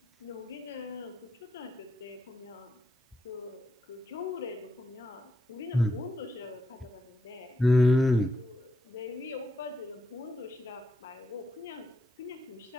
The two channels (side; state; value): both; normal; correlation 0.83